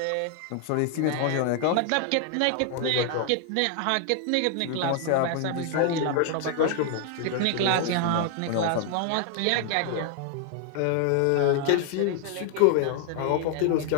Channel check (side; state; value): both; different; correlation 0.00